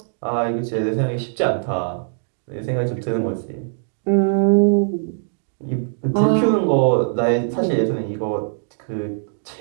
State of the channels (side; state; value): left; silent; digital silence